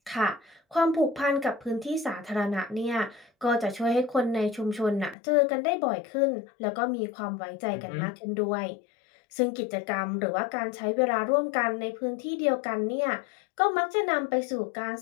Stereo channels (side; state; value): right; drops out; at 5.2 s